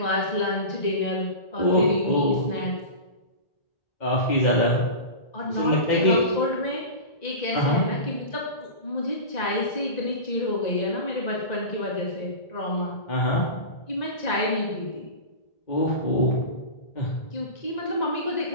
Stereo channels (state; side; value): late; right; 1.9 ms